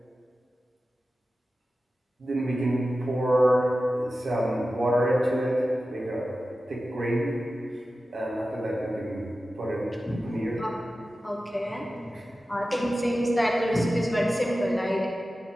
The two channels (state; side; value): normal; both; correlation 0.94